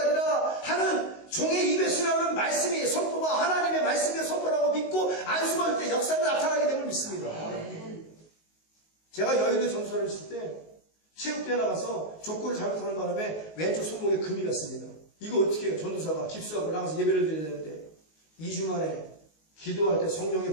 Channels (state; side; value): late; right; 19 ms